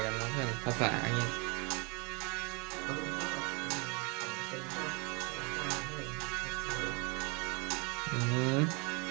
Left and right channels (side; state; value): left; quieter; 30.5 dB